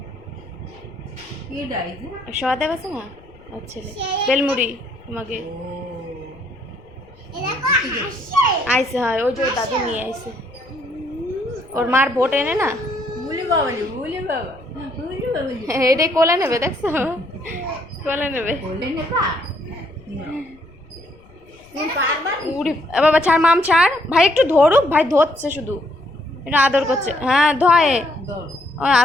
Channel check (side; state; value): left; noise; rumble, 27 dB below the sound